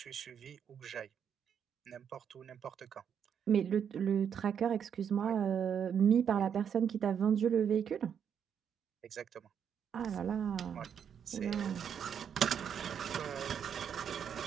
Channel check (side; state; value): left; quieter; 8.0 dB